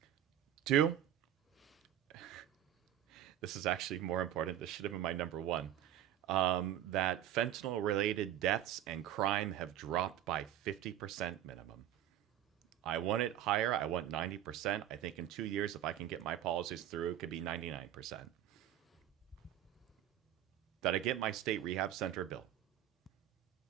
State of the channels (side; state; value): left; quieter; 11.6 dB